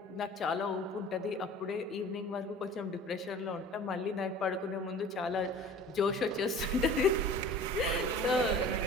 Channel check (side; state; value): both; normal; correlation 0.43